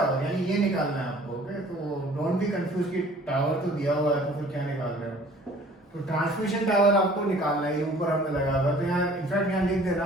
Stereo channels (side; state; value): both; normal; correlation 0.52